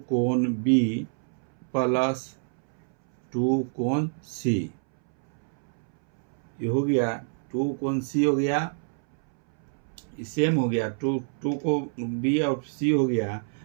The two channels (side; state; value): left; silent; 60 dB below the other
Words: कोण B प्लस 2 कोण C, ये हो गया 2 कोण C हो गया, सेम हो गया, 2 को B और C हो गया।